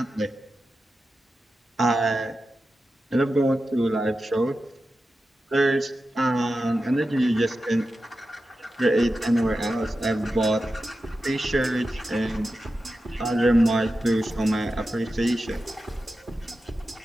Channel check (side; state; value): both; normal; correlation 0.91